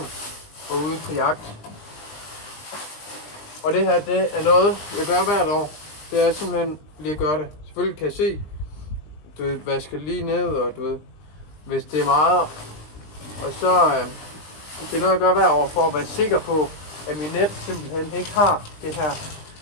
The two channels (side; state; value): right; late; 20 ms